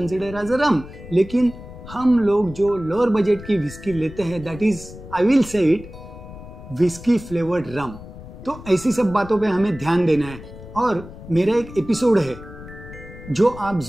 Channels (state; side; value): noise; left; rumble, 15 dB below the sound